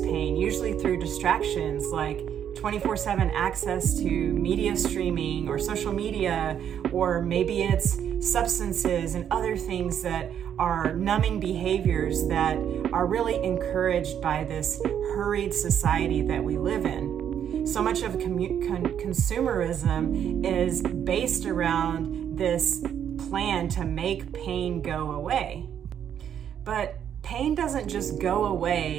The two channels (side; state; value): left; quieter; 9.1 dB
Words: usually through distractions like 24/7 access to media streaming or social media, or maybe it's substances and other things that are numbing behaviors that are really encouraged by this hurried society that we live in. So much of consumerism is based around this plan to make pain go away. But pain doesn't just go